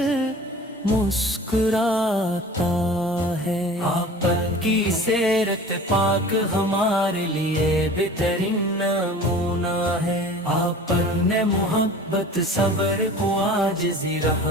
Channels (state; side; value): normal; both; correlation 0.41